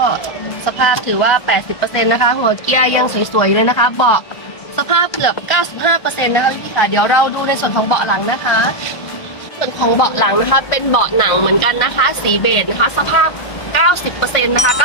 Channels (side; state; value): right; late; 1.5 ms